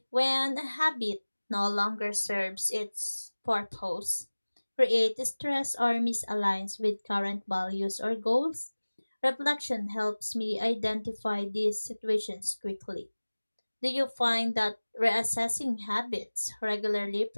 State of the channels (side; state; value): both; inverted; correlation -1.00